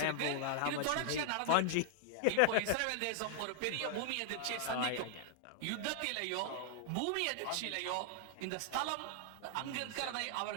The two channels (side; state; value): both; different; correlation 0.00